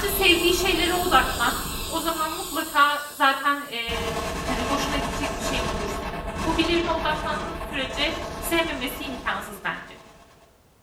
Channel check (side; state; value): both; identical; correlation 1.00